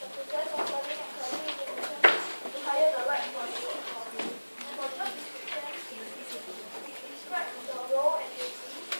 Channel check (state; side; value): inverted; both; correlation -1.00